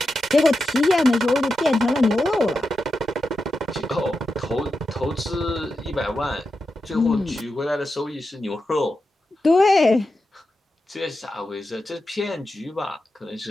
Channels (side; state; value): both; normal; correlation 0.89